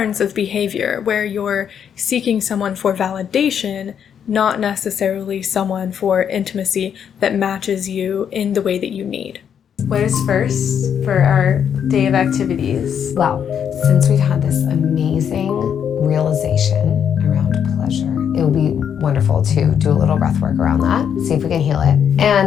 of behavior where you're seeking someone for validation, not necessarily someone for intimacy that matches you in the way that you need. What is first for our day of activities? Well, since we've had this amazing realization around pleasure, it would be wonderful to do a little breath work around that, see if we can heal it.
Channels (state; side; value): quieter; right; 8.2 dB